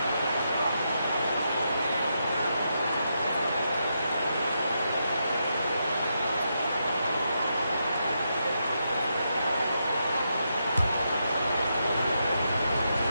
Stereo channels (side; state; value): both; inverted; correlation -0.83